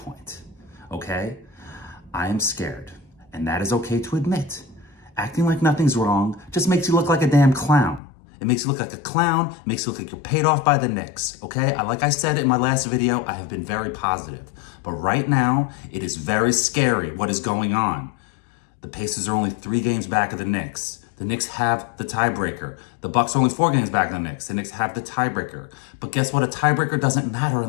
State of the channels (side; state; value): right; drops out; at 8.0 s